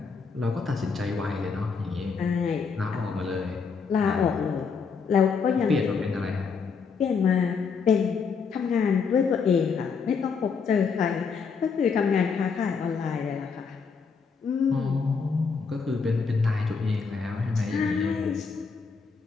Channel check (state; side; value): quieter; right; 5.5 dB